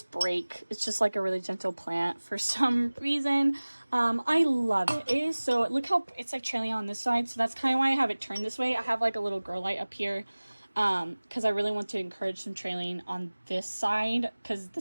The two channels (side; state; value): both; inverted; correlation -1.00